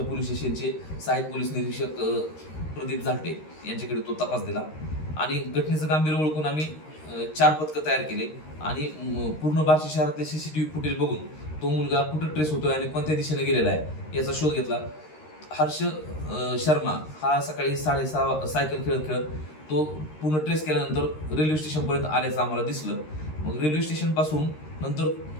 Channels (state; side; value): late; right; 13 ms